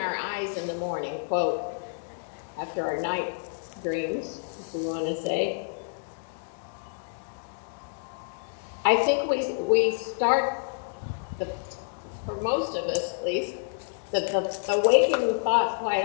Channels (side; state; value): right; silent; digital silence